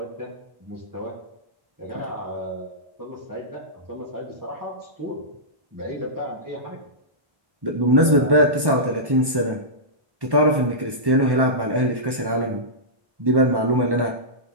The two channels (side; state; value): left; late; 1.1 ms